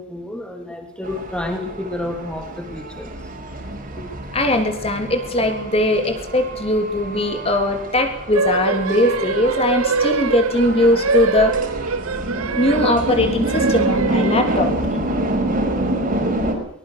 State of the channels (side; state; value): both; normal; correlation 0.27